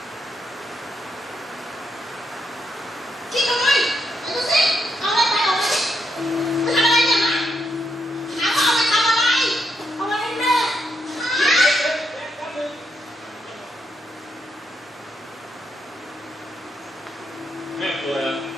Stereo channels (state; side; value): normal; both; correlation 0.79